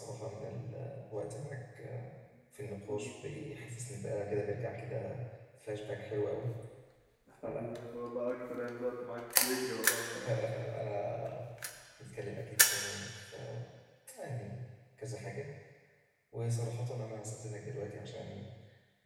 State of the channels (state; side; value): identical; both; correlation 1.00